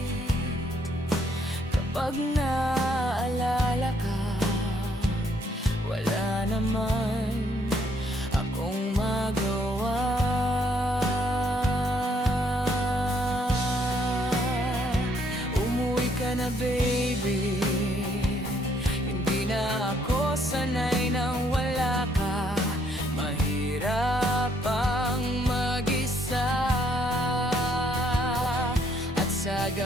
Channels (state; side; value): normal; both; correlation 0.69